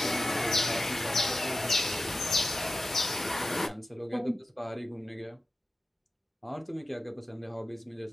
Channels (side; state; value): both; normal; correlation 0.92